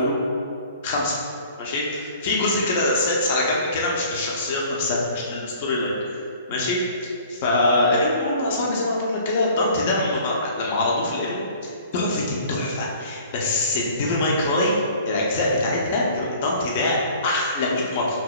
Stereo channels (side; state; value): both; inverted; correlation -0.49